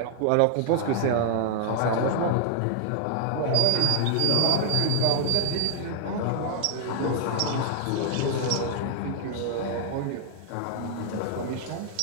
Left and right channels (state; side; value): different; both; correlation 0.00